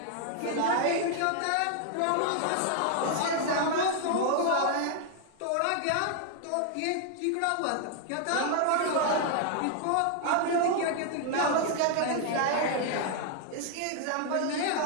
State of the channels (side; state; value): both; different; correlation 0.00